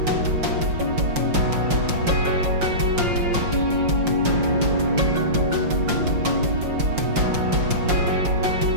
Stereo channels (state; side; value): late; left; 5.6 ms